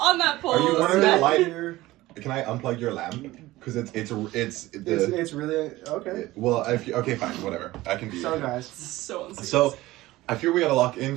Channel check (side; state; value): left; quieter; 17.8 dB